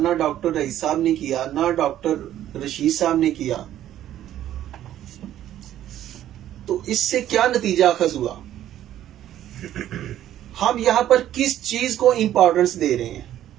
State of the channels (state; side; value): quieter; left; 12.1 dB